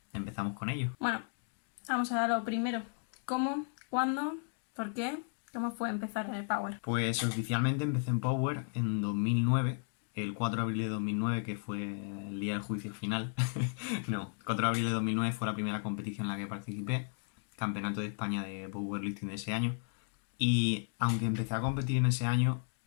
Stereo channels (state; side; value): silent; right; 55 dB below the other